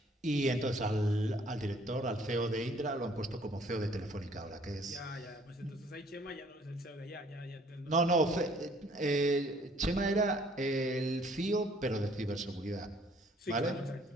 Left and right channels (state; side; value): normal; both; correlation 0.59